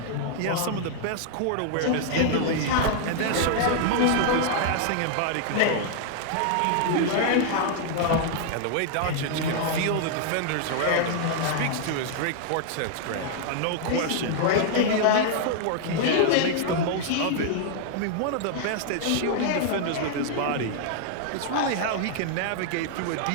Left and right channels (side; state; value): both; different; correlation -0.01